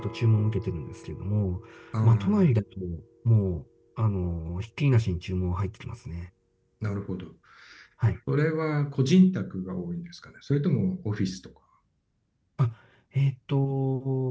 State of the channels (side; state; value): both; identical; correlation 1.00